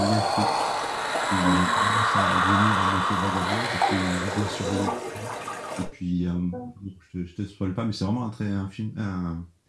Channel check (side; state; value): both; identical; correlation 1.00